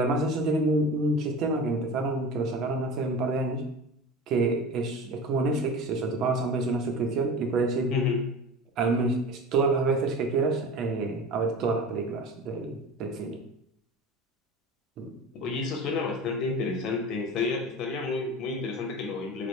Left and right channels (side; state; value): both; normal; correlation 0.34